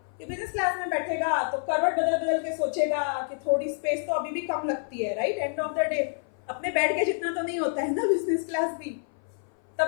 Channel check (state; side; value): silent; right; 57 dB below the other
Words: कि बिजनेस क्लास में बैठेगा तो करवट बदल बदल के सोचेगा कि थोड़ी स्पेस तो अभी भी कम लगती है, right? And of the day अपने बेड के जितना तो नहीं होता है ना बिजनेस क्लास भी।